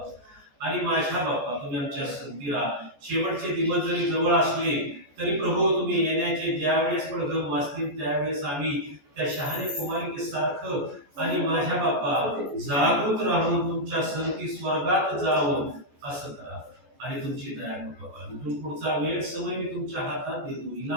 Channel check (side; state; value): left; late; 14 ms